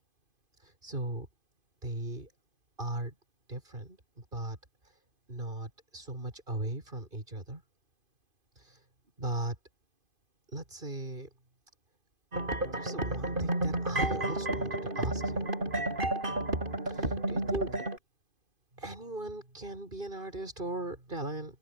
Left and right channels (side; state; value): left; late; 2.5 ms